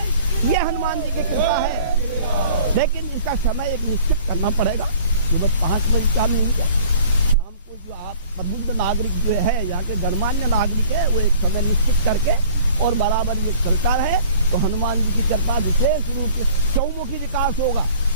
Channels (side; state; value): both; inverted; correlation -0.49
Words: ये हनुमान जी की कृपा है। लेकिन इसका समय एक निश्चित करना पड़ेगा। सुबह 5 बजे शाम नहीं क्या, शाम को जो आप प्रबुद्ध नागरिक जो है, यहाँ के गणमान्य नागरिक है, वो एक समय निश्चित करके और बराबर ये चलता रहे तो हनुमान जी की कृपा विशेष रूप से चौमुखी विकास होगा।